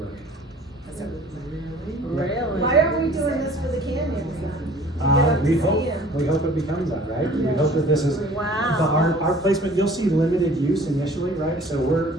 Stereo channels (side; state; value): both; normal; correlation 0.50